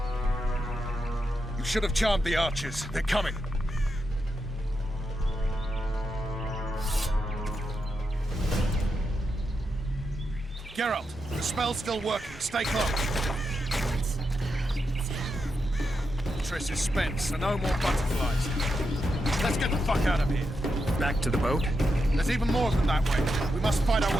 You should have charmed the archers. They're coming. Geralt, the spell's still working. Stay close. Triss is spent, so no more butterflies. Let's get the fuck out of here. Back to the boat? There's even more of them that way. We must find our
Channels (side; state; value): both; normal; correlation 0.85